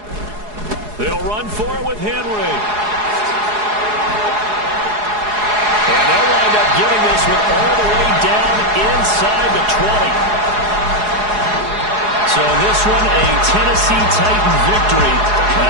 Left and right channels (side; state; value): left; late; 4.8 ms